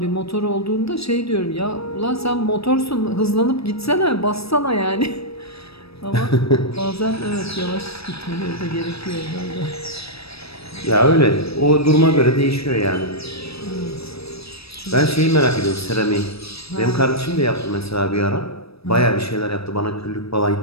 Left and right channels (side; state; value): right; late; 0.77 ms